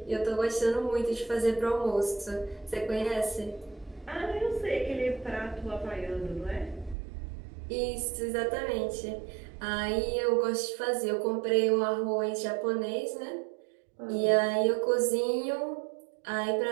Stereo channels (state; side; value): drops out; left; at 7.0 s